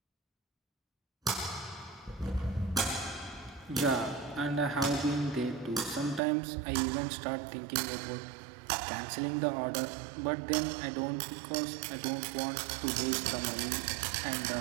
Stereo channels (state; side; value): drops out; left; at 6.2 s